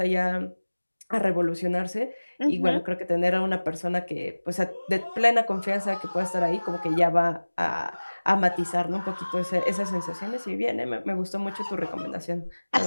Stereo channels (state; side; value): inverted; both; correlation -1.00